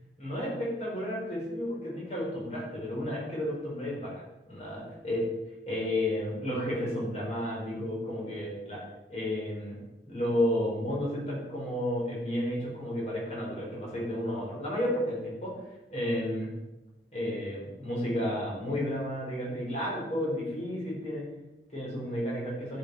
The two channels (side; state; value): both; normal; correlation 0.64